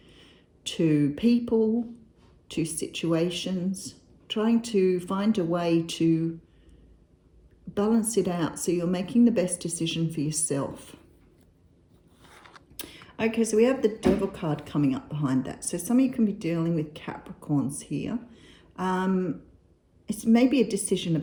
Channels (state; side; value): identical; both; correlation 1.00